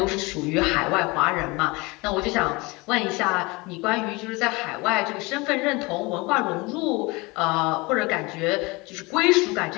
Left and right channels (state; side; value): quieter; right; 24.8 dB